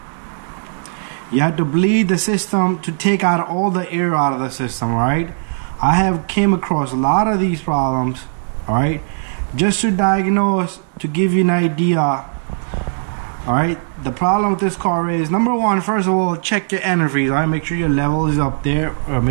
You have to bleed the system to take out all the air out of the system, right? I have came across a lot of these problems, all right? Just to diagnose, to give you an idea, all right? The problem with this car is, number one, first of all, check your antifreeze, all right? Make sure your level is up there, or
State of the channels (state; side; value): silent; left; 62 dB below the other